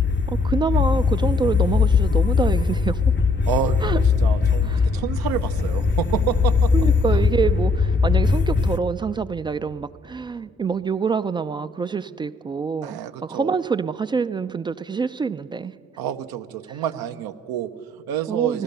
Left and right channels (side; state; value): both; normal; correlation 0.67